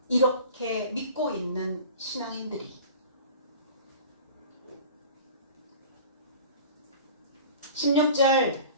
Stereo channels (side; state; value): both; inverted; correlation -0.41